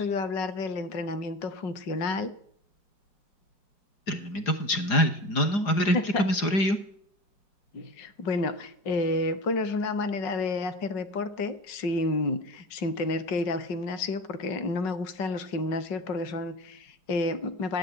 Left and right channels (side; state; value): right; late; 4.9 ms